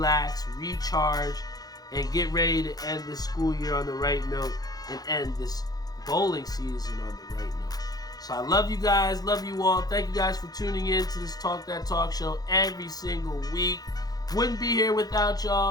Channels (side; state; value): right; late; 0.19 ms